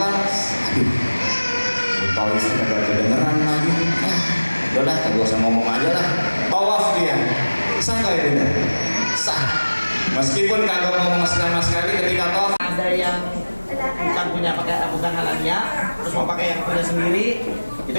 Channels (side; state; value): both; inverted; correlation -1.00